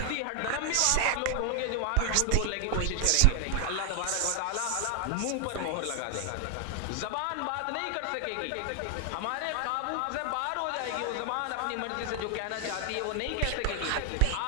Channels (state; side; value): different; both; correlation 0.00